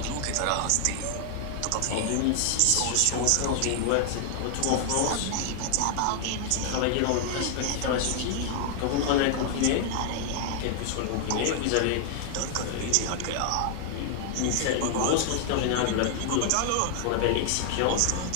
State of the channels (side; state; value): both; different; correlation 0.00